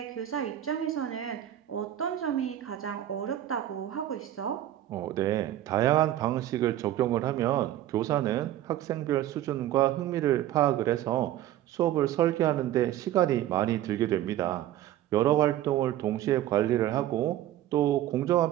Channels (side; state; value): left; quieter; 12.9 dB